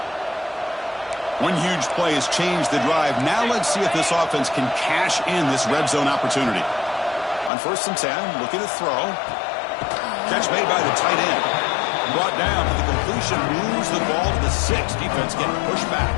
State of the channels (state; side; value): drops out; right; at 7.5 s